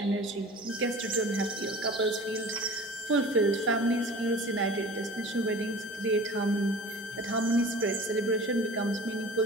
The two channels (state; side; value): normal; both; correlation 0.40